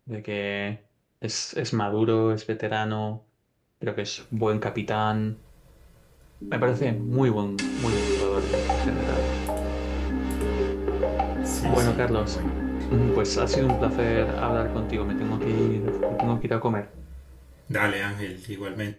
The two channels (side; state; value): both; identical; correlation 1.00